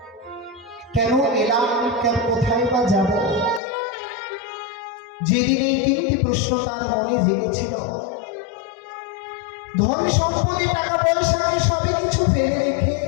কেন এলাম, কেন কোথায় বা যাব। যেদিন এই তিনটি প্রশ্ন তার মনে জেগেছিল, ধন সম্পদে টাকা পয়সাকে সবে কিছু ফেলে রেখে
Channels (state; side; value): drops out; right; at 3.6 s